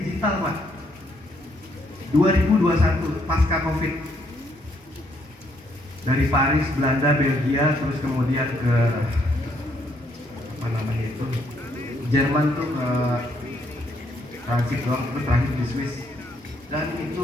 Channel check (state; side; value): normal; both; correlation 0.71